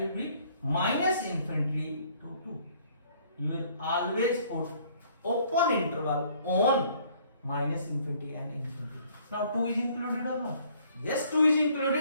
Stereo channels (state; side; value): inverted; both; correlation -0.60